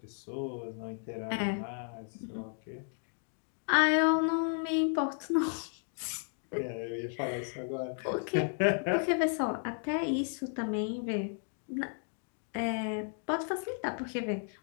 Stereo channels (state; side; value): silent; right; 55 dB below the other